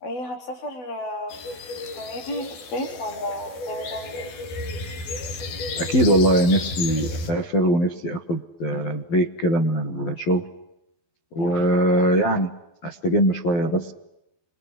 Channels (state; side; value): late; right; 12 ms